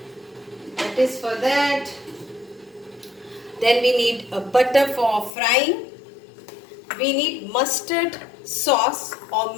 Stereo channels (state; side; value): drops out; right; at 5.3 s